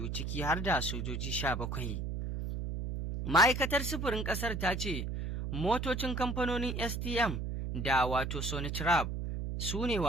ciki har da sojoji 17. Ma'aikatar sufurin ƙasar ta ce motocin kamfanonin STM da Sonitrab su ne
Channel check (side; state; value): right; noise; hum, 3 dB below the sound